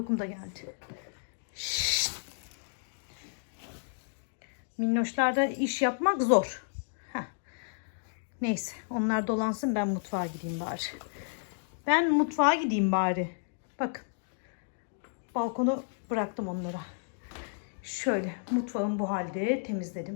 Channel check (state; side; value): silent; right; digital silence